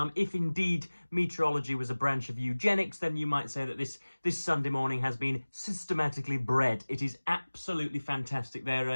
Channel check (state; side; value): inverted; both; correlation -1.00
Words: If indeed meteorology was a branch of eugenics, then you might say that this Sunday morning has been systematically bred. It is absolutely fantastic. There